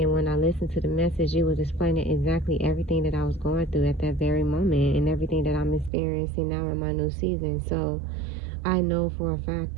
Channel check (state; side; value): drops out; left; at 5.9 s